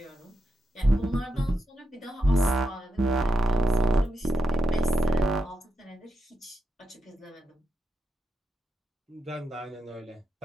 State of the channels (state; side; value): normal; both; correlation 0.85